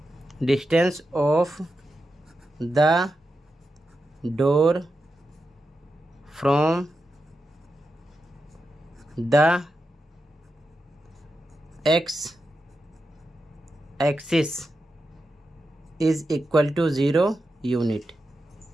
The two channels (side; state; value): both; normal; correlation 0.89